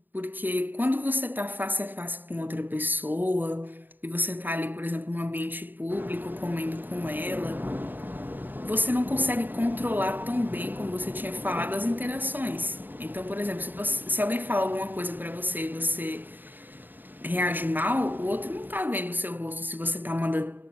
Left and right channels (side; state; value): left; late; 0.091 ms